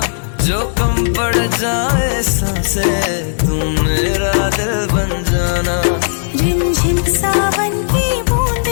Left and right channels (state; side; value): silent; right; digital silence